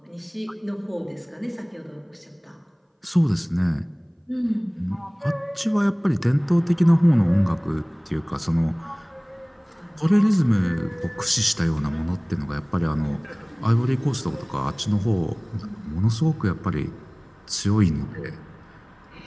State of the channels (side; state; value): both; identical; correlation 1.00